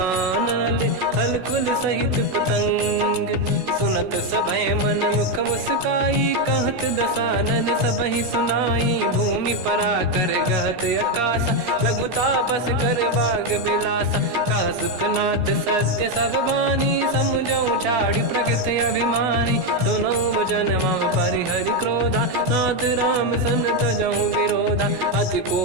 हलकुल सहित पतंग। सुनत सभय मन मुख मुस्काई, कहत दसानन सबहि सुनाई। भूमि परा कर गहत आकाश, लघु तापस कर बाग बिलासा। कह सुखनाथ सत्य सब बानी, समझौ छाड़ी प्रगति अभिमानी। सुनो भजन मम परिहरि क्रोधा, नाथ राम सन तजहु विरोधा। अति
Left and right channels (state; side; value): late; left; 16 ms